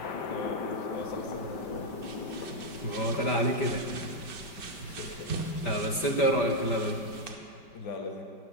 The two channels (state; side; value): late; right; 5.2 ms